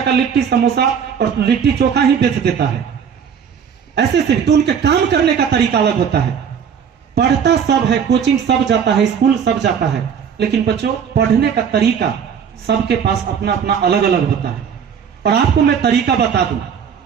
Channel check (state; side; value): quieter; left; 7.4 dB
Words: का लिट्टी समोसा और लिट्टी चोखा ही बेच देता है। ऐसे से तो उनके काम करने का तरीका अलग होता है। पढ़ता सब है, कोचिंग सब जाता है, स्कूल सब जाता है, लेकिन बच्चों पढ़ने का तरीका सबके पास अपना अपना अलग अलग होता है। और आपको मैं तरीका बता दूं